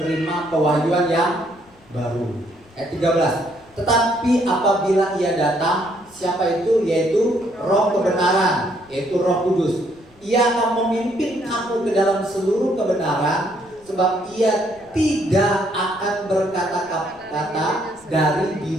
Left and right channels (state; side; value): noise; left; rumble, 28 dB below the sound